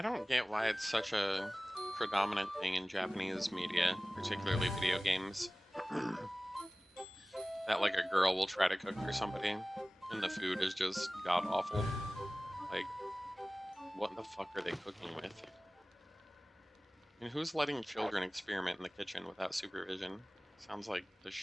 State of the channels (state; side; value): normal; both; correlation 0.98